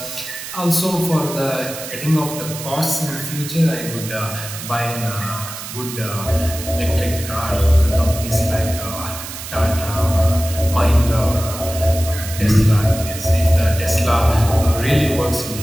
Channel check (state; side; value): noise; right; hiss, 10 dB below the sound